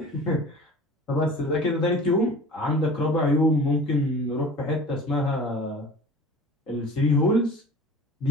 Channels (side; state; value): both; normal; correlation 0.40